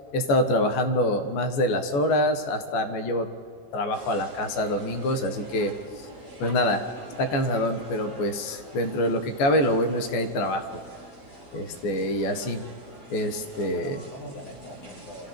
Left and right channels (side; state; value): right; late; 14 ms